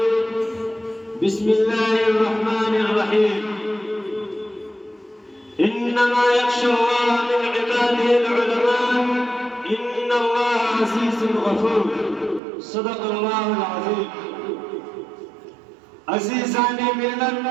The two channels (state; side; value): drops out; left; at 12.4 s